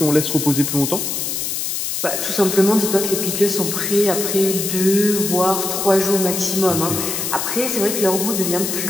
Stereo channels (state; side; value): noise; left; hiss, 2 dB below the sound